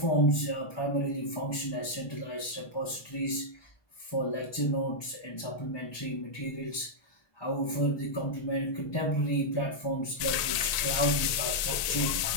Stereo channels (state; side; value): late; right; 1.8 ms